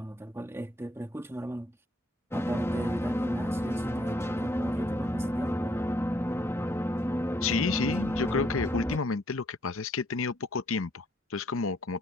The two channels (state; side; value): normal; both; correlation 0.68